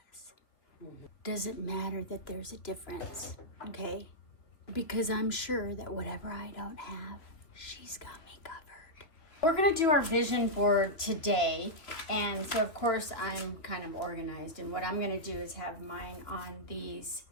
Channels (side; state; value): right; late; 2.8 ms